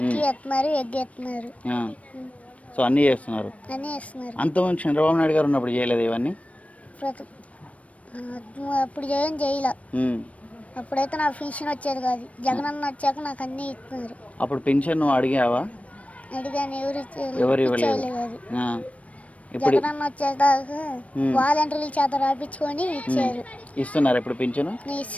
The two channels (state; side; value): late; right; 0.066 ms